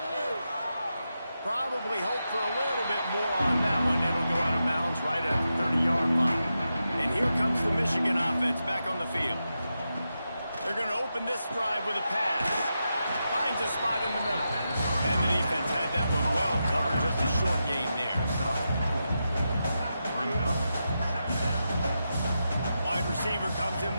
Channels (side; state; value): both; inverted; correlation -0.88